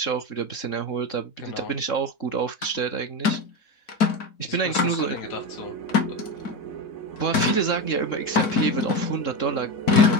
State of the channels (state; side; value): late; right; 4.5 ms